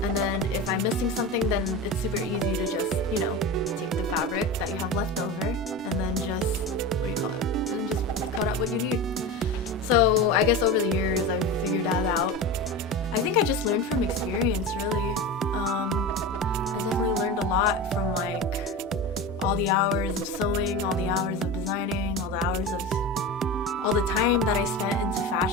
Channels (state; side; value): normal; both; correlation 0.26